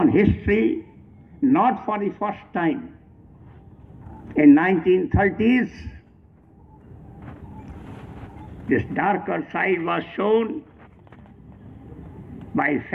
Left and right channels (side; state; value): both; identical; correlation 1.00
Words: history, not for the first time. In 1930s, this darker side was shown by